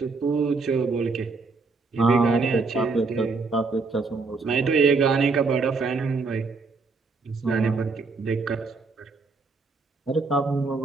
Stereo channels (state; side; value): quieter; left; 4.2 dB